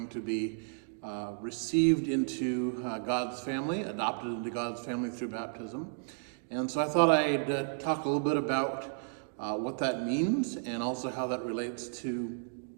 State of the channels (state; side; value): silent; left; digital silence